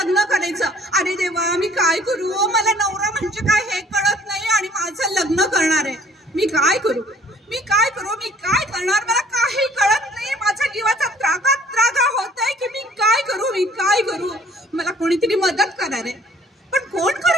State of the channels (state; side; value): normal; both; correlation 0.56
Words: करायचं. अरे देवा, मी काय करू? मला नवरा म्हणजे काय हे कळत नाही आणि माझं लग्न करणार आहे. मी काय करू? मी काय करू? मी काय करणार? मला काही कळत नाही. माझ्या जीवाचा त्रागा होतोय की मी काय करू? मी काय करू? मला कोणीतरी मदत करणार आहे, पण कोण